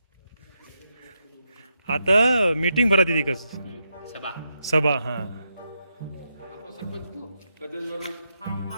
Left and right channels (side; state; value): both; inverted; correlation -0.83